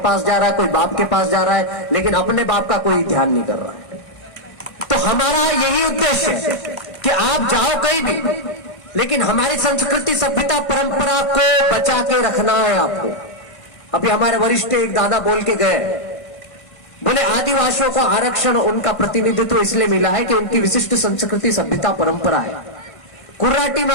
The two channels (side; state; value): right; late; 1.5 ms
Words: जा रहा है, कोई बाप के पास जा रहा है, लेकिन अपने बाप का कोई ध्यान नहीं कर रहा है। तो हमारा यही उद्देश्य है कि आप जाओ कहीं भी, लेकिन हमारी संस्कृति, सभ्यता, परंपरा को बचा के रखना है आपको। अभी हमारे वरिष्ठ एक दादा बोल के गए, बोले आदिवासियों को आरक्षण, उनका प्रतिनिधित्व इसलिए मिला है कि उनकी विशिष्ट संस्कृति, सभ्यता, परंपरा है। कुर्राटी